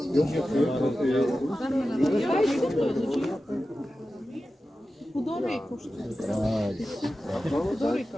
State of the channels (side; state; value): both; normal; correlation 0.93